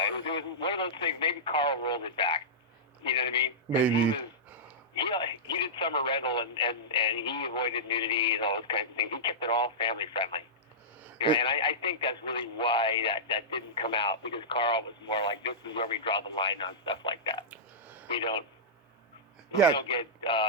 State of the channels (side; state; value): both; normal; correlation -0.14